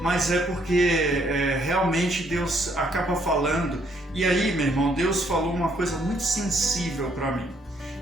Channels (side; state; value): both; normal; correlation 0.69